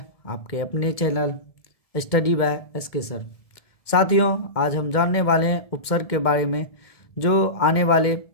आपके अपने channel study by SK sir. साथियों, आज हम जानने वाले हैं उपसर्ग के बारे में, जो आने वाले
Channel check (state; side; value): late; right; 1.7 ms